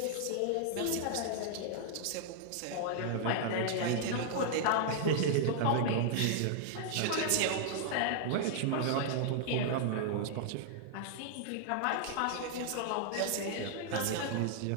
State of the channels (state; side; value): different; both; correlation -0.01